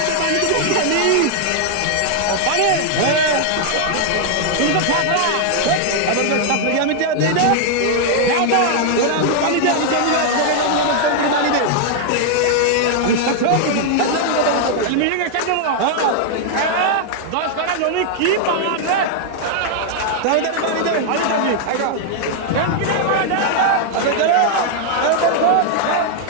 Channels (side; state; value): both; different; correlation 0.00